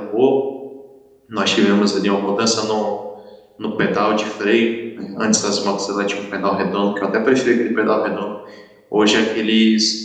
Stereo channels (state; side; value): identical; both; correlation 1.00